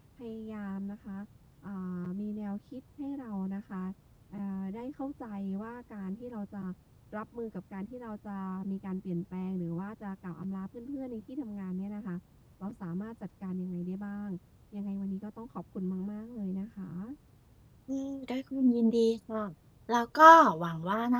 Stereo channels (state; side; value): identical; both; correlation 1.00